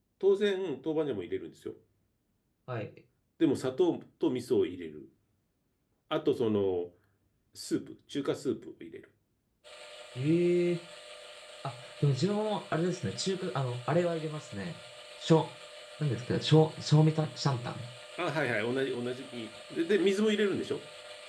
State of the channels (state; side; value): identical; both; correlation 1.00